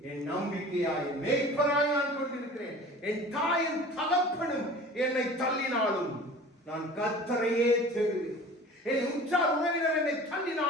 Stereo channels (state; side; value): normal; both; correlation 0.42